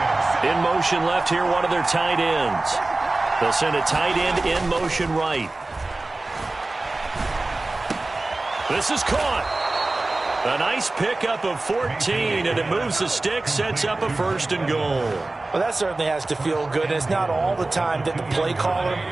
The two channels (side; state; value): left; quieter; 3.0 dB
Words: In motion left here, one of their tight ends. They'll send a tight end in motion right. This is caught. A nice pickup of 14, and it moves the stick, sets up a 1st and goal. Well, that certainly has to feel good. And it's not all the time that the play caller